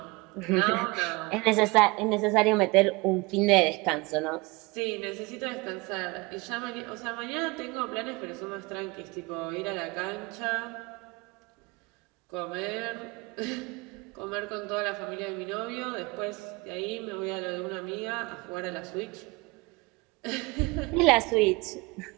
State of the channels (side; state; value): left; quieter; 25.2 dB